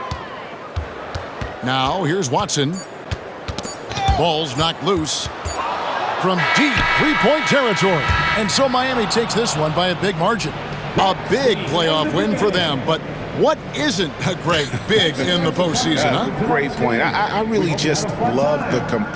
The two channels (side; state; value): both; identical; correlation 1.00